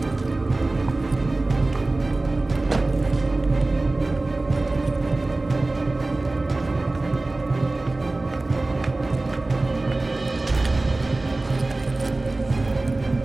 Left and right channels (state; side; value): quieter; left; 3.0 dB